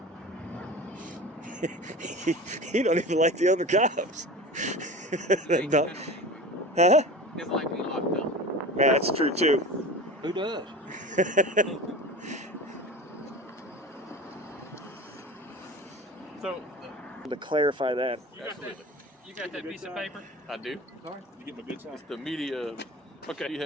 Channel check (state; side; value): normal; both; correlation 0.34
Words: He don't even like the other cops. Huh? It's like we locked up. Man, that's true too. Who does? So, To clarify that. You got that piece of paper? I do. Sorry? You get my good side. It's the media. Okay. You